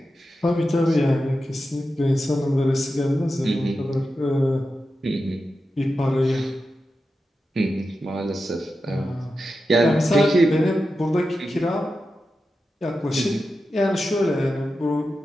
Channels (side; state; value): both; normal; correlation 0.90